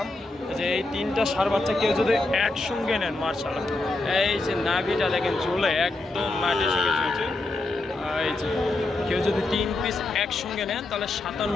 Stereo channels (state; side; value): quieter; right; 3.1 dB